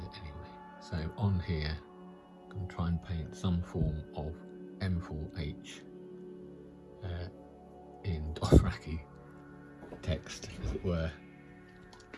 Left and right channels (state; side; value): identical; both; correlation 1.00